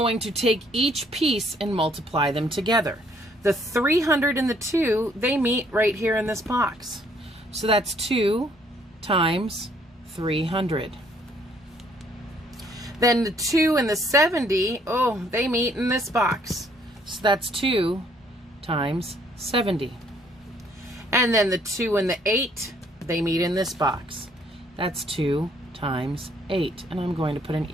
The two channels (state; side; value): normal; both; correlation 0.64